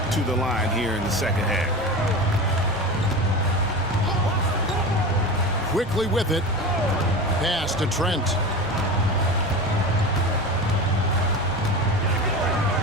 to the line here in the second half. Quickly with it. Pass to Trent.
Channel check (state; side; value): normal; both; correlation 0.28